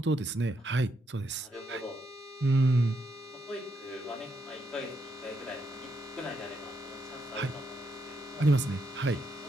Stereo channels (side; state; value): both; normal; correlation 0.79